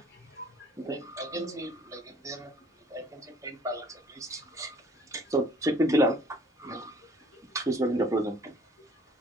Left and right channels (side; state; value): both; normal; correlation 0.55